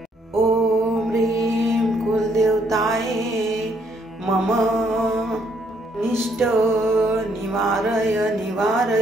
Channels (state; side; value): normal; both; correlation 0.70